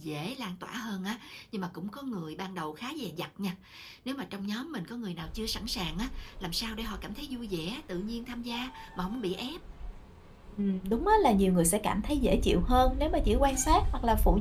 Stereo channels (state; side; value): identical; both; correlation 1.00